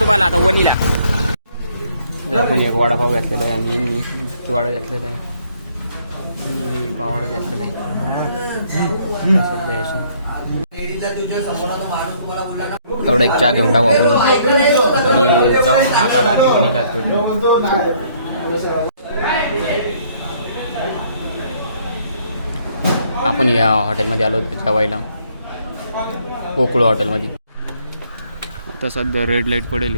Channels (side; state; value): both; inverted; correlation -0.65